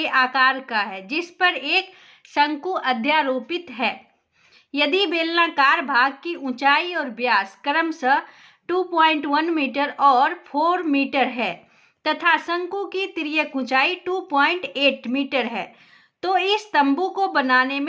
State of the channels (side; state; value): both; identical; correlation 1.00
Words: आकार का है जिस पर एक शंकु अध्यारोपित है। यदि बेलनाकार भाग की ऊंचाई और व्यास क्रमशः 2.1 मीटर और 4 मीटर है तथा शंकु की तिर्यक ऊंचाई 2.8 मीटर है, तो इस तंबू को बनाने